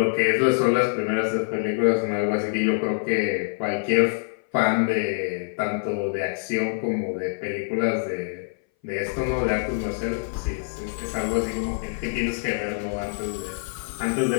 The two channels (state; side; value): silent; right; 60 dB below the other